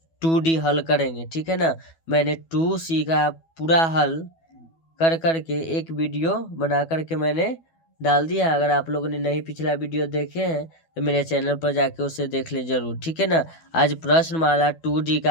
2D हल करेंगे, ठीक है ना। मैंने 2C का पूरा हल कर करके एक वीडियो बना करके मैंने डाल दिया। अगर आप लोगों ने नहीं पिछला वीडियो देखे हैं तो मेरे चैनल पर जाके उसे देख ले जरूर, ठीक है ना। आज प्रश्नमाला 2D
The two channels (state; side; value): late; right; 12 ms